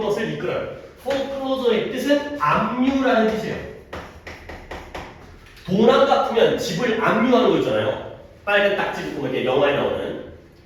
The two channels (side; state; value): both; identical; correlation 1.00